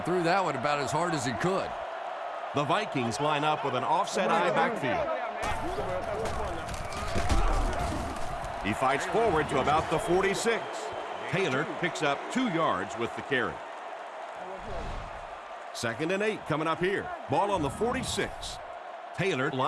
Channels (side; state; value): both; identical; correlation 1.00